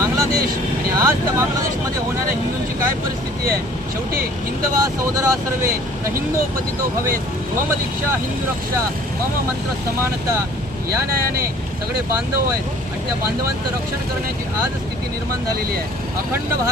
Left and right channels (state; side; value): normal; both; correlation 0.52